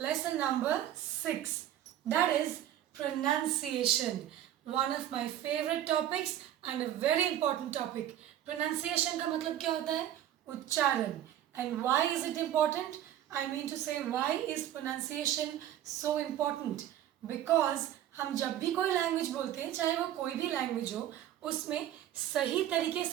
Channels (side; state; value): left; quieter; 11.8 dB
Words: lesson number 6, that is pronunciation. One of my favorite topics and a very important topic. Pronunciation का मतलब क्या होता है, उच्चारण. And why is it important? I mean to say, why is pronunciation so important? Because हम जब भी कोई लैंग्वेज बोलते हैं, चाहे वो कोई भी लैंग्वेज हो, उसमें सही तरीके